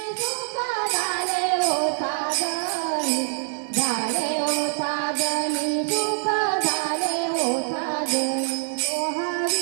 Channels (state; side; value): silent; left; 57 dB below the other